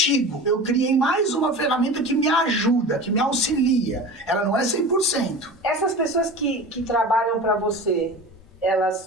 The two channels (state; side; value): normal; both; correlation 0.34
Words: Eu criei mais uma ferramenta que me ajuda, que me auxilia. Ela não é 100%. Essas pessoas que trabalham para você,